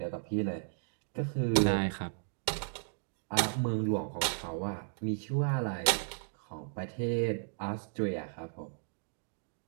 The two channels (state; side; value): silent; left; digital silence